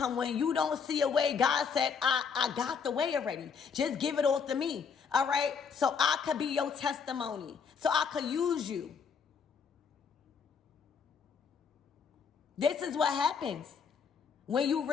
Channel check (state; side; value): quieter; right; 6.1 dB